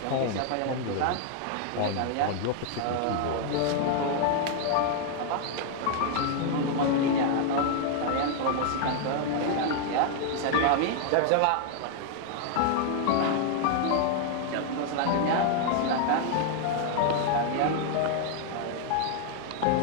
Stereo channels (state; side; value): different; both; correlation 0.00